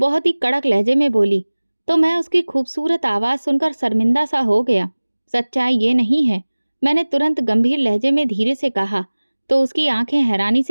ही कड़क लहजे में बोली। तो मैं उसकी खूबसूरत आवाज़ सुनकर शर्मिंदा सा हो गया। सच्चाई ये नहीं है, मैंने तुरंत गंभीर लहजे में धीरे से कहा। तो उसकी आंखें हैरानी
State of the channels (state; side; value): inverted; both; correlation -1.00